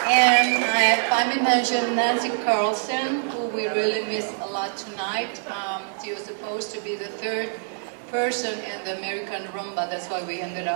And I may mention Nancy Carlson, who we really miss a lot tonight. She was supposed to be the third person in the American Rumba, that's why we ended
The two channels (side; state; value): left; silent; 62 dB below the other